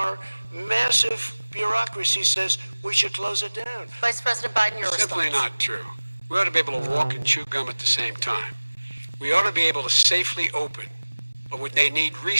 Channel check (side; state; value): both; inverted; correlation -1.00